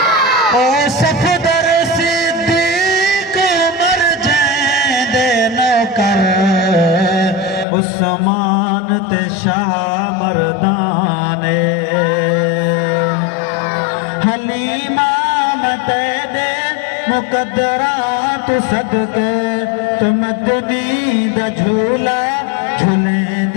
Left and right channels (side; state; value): right; drops out; at 7.7 s